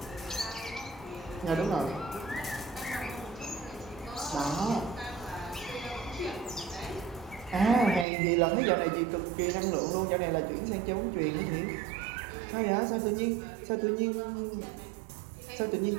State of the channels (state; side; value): drops out; left; at 8.1 s